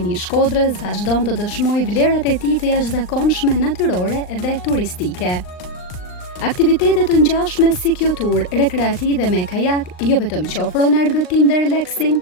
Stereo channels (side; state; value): right; late; 39 ms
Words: i Shkodrës vazhdon të dëshmojë vlerat e tij të jashtëzakonshme natyrore dhe turistike. Aktivitetet të ngjashme si kjo tur rekreative me kajak jo vetëm që ofrojnë argëtim dhe relaksim,